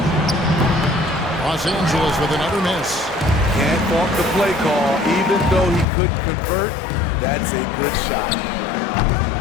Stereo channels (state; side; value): drops out; right; at 5.9 s